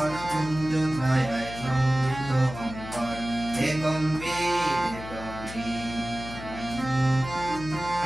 কুঞ্জ ছায় সমৃদ্ধ অন্তর হে গম্ভীর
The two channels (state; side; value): noise; left; hum, 12 dB below the sound